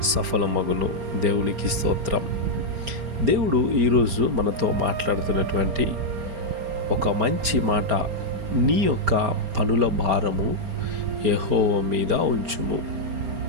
సఫలమగును. దేవునికి స్తోత్రం. దేవుడు ఈరోజు మనతో మాట్లాడుతున్నటువంటి ఒక మంచి మాట, నీ యొక్క పనుల భారము యెహోవా మీద ఉంచుము.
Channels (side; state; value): left; late; 4.3 ms